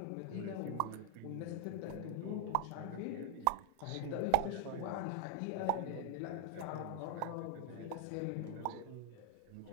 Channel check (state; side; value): different; both; correlation 0.00